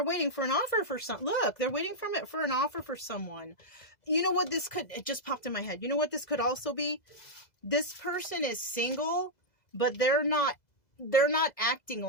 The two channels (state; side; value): late; right; 2.0 ms